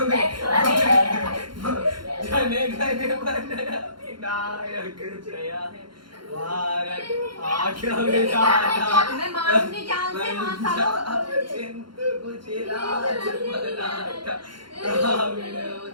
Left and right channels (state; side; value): late; left; 0.72 ms